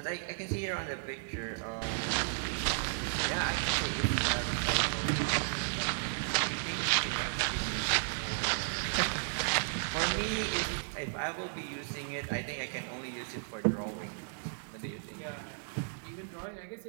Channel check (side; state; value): left; silent; digital silence